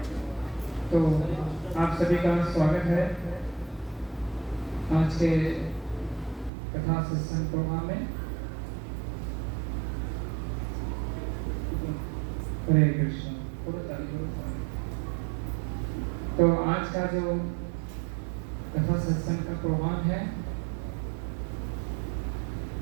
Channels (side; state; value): left; drops out; at 6.5 s